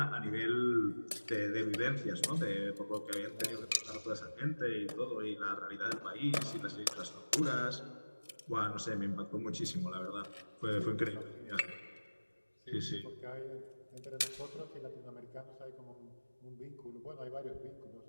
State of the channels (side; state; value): both; inverted; correlation -1.00